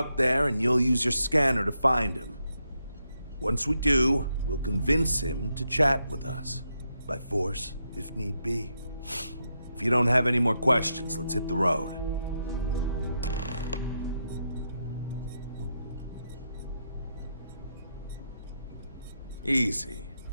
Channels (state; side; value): inverted; both; correlation -0.83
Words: there and you'll use your scanner to find him. Once we do, we'll convince him to chat with us. By force, if need be. If you don't have any more questions, let's hit the road. Easy.